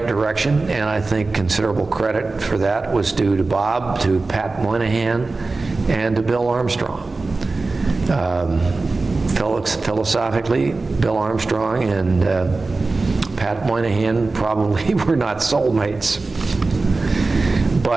direction, and I think considerable credit for that was due to Bob, to Pat Moynihan, and to Bill Armstrong. Philosophically, Bill Armstrong and Pat Moynihan probably were not soulmates,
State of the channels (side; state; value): left; quieter; 3.6 dB